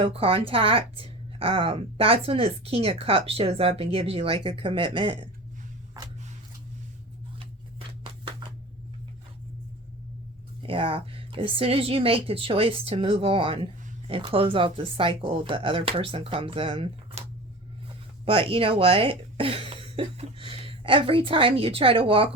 contact, that's when this King of Cups shows up and gives you like a commitment. Yeah, as soon as you make the choice to move on and close out the cycle, the other person comes in. But you know what? Every time you try to walk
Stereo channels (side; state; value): both; normal; correlation 0.35